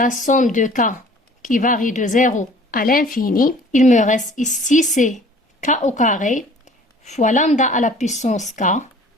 somme de k qui varie de 0 à l'infini. Il me reste ici c'est k au carré fois lambda à la puissance k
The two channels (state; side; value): normal; both; correlation 0.50